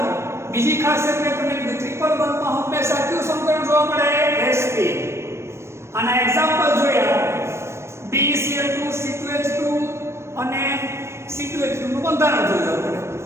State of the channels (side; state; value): left; late; 0.13 ms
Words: બીજી ખાસિયત મેં તમને કીધું ટ્રિપલ બંધમાં હંમેશા કયું સંકરણ જોવા મળે? sp. આના એક્ઝામ્પલ જોયા BeCl2 C2H2 અને C2H2 નું બંધારણ જોયું આપણે.